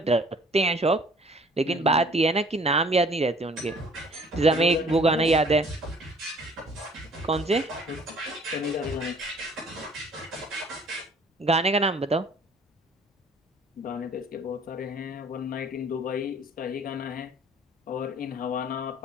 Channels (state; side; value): normal; both; correlation 0.54